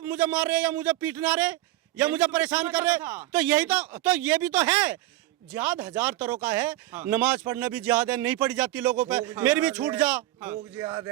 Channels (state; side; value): quieter; left; 16.3 dB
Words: मुझे मार रहे या मुझे पीटना रहे या मुझे परेशान कर रहे, तो यही तो ये भी तो है। जिहाद 1000 तरह का है। नमाज पढ़ना भी जिहाद है, नहीं पढ़ी जाती लोगों पे, मेरी भी छूट जा। भूख जिहाद